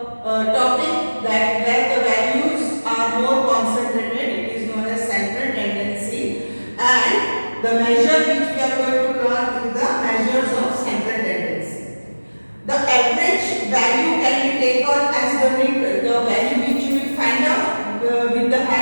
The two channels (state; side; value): inverted; both; correlation -1.00